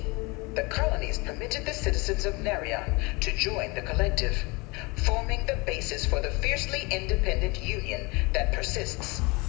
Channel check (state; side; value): quieter; right; 26.6 dB